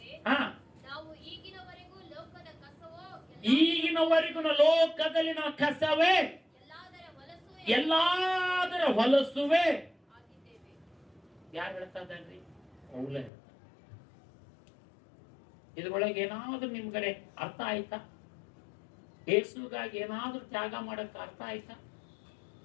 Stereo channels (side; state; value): right; drops out; at 13.3 s